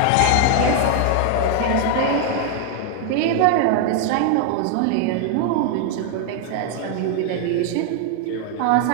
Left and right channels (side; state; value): both; different; correlation 0.00